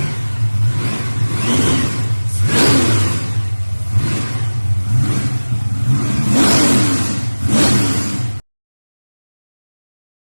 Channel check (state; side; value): inverted; both; correlation -1.00